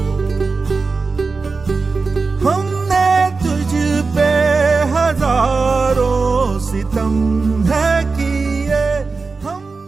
हमने तुझ पे हजारों सितम है किए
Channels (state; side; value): quieter; left; 4.2 dB